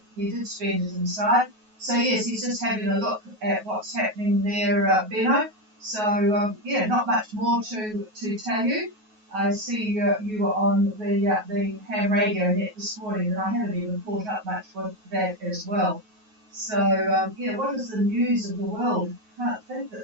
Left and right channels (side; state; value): left; late; 9.4 ms